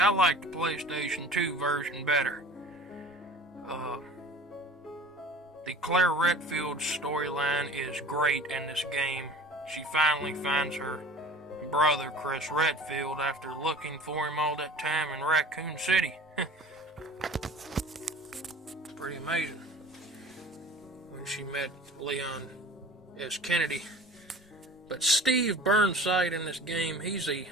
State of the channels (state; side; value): normal; both; correlation 0.42